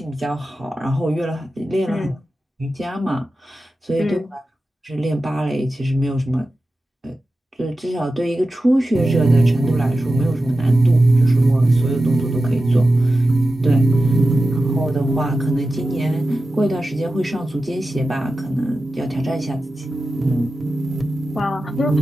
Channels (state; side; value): normal; both; correlation 0.93